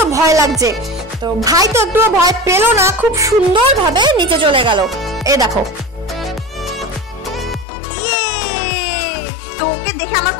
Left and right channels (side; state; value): right; drops out; at 7.7 s